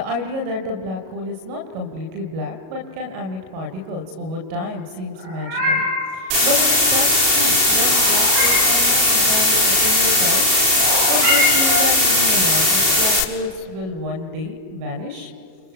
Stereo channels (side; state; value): left; late; 37 ms